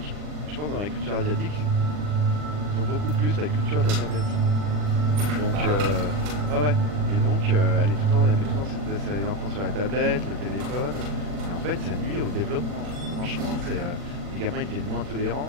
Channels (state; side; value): late; left; 40 ms